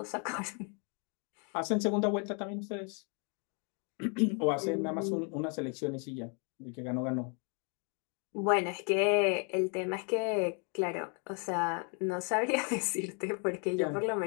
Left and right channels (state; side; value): quieter; right; 38.7 dB